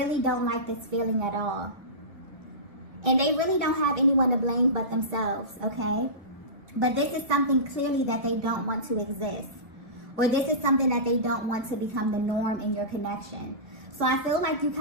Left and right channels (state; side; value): late; left; 1.7 ms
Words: don't like this feeling at all. And they really don't have anyone to blame but themselves, okay? But this is something clearly that they don't want to exist. or this is something that they don't want to become the norm in your connection. So I feel like you